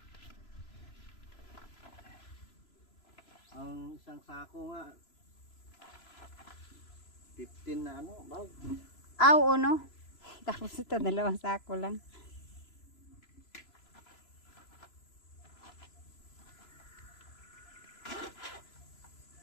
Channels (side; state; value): right; late; 3.0 ms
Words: Ang isang sako nga 15 na ano, bag. Aw, no? Tapos ito, 2 sako lang.